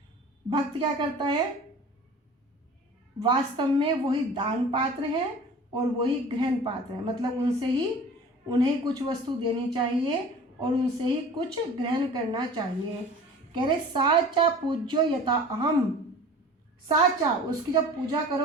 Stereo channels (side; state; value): both; normal; correlation 0.42